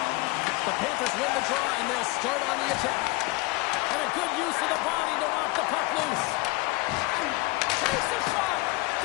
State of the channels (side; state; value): right; quieter; 23.1 dB